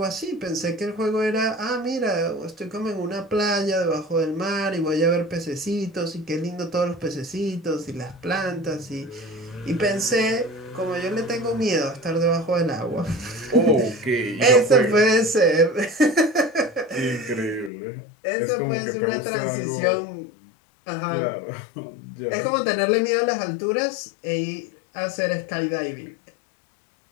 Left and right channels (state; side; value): drops out; right; at 17.7 s